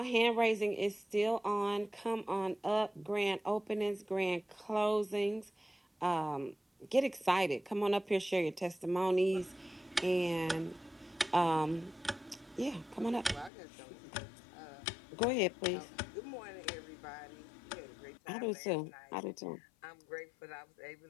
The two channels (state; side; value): drops out; right; at 13.5 s